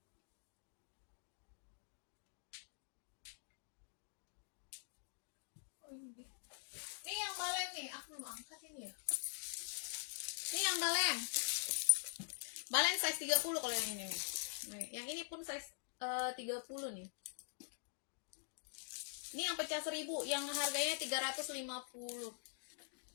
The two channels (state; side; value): silent; right; digital silence